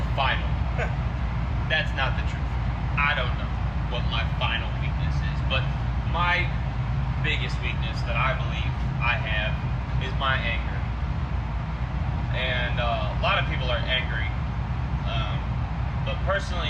final, that's not the truth. I don't know what my final weakness is, but my biggest weakness that I believe I have is my anger. And a lot of people are angry, but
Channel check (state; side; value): identical; both; correlation 1.00